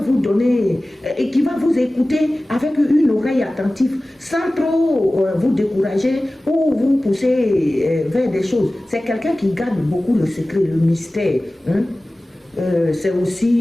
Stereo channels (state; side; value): normal; both; correlation 0.97